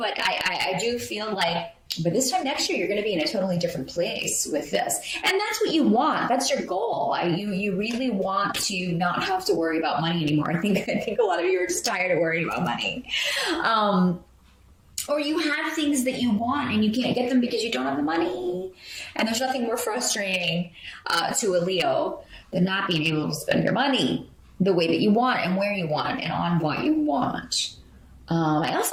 I do feel like by this time next year, you're going to be in a totally different place with this. And that's what you want. That's your goal. You really want to not have to worry about money anymore. I think a lot of you are just tired of worrying about money. Or you have things that you want and you can't get them because you don't have the money. And there's nothing more frustrating to a Leo than not being able to spend your money the way that you want and where you want and on what you want. I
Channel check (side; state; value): both; identical; correlation 1.00